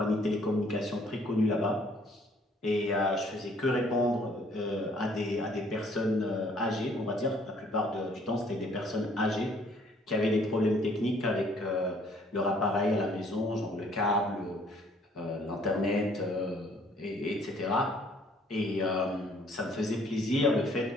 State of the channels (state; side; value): normal; both; correlation 0.61